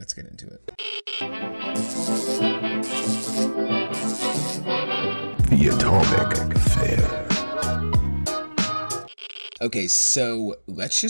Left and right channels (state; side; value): inverted; both; correlation -1.00